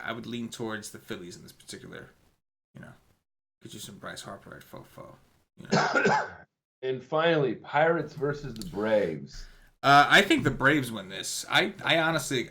I would lean towards the Phillies in this particular. Get you some Bryce Harper at fofo. And finally, Pirates versus the Braves. I think the Braves win this. I honestly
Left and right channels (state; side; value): identical; both; correlation 1.00